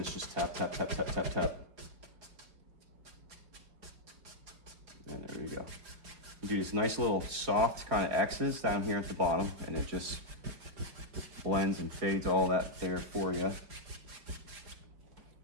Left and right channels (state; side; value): late; left; 4.7 ms